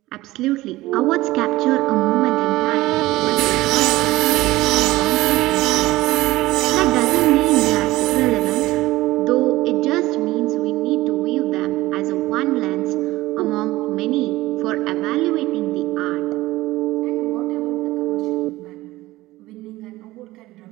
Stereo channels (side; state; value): left; quieter; 18.3 dB